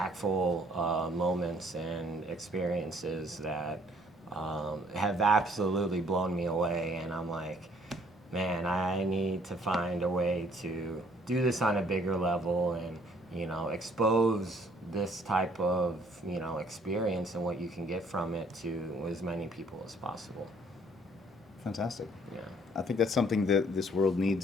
moments and experiences that have absolutely blown me away, and I'm like, man, I need to find a way to do this on a bigger level and, expose this type of, experience and what you can get from it to as many people as possible. Fantastic. Yeah. I think that's something that this world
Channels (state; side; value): normal; both; correlation 0.60